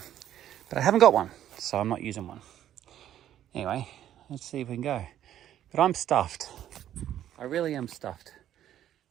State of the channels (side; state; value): left; quieter; 11.4 dB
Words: But I haven't got one, so I'm not using one. Anyway, let's see if we can go. But I'm stuffed. I really am stuffed.